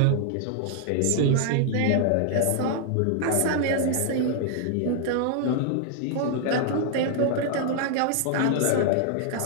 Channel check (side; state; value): both; different; correlation 0.00